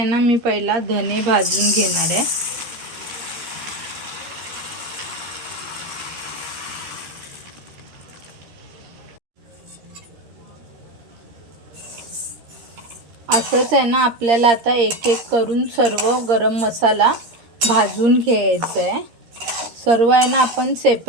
ना मी पहिला धने भाजून घेणार आहे. असंच आहे ना आपल्याला आता एक एक करून सर्व गरम मसाला भाजून घ्यायचा आहे. सर्व आहे ना आपण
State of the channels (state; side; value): late; left; 13 ms